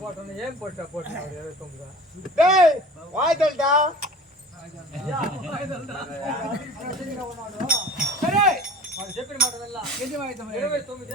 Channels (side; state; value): both; normal; correlation 0.42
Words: போட்டோன்னு ஏன் போட்டா 29 டேய் வாய்தல்டா సరే వాడు చెప్పిన మాట వెళ్ళా ఎన్ని వాయిద్యం 29